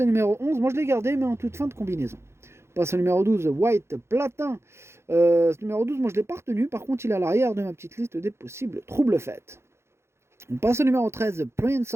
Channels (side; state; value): left; late; 0.13 ms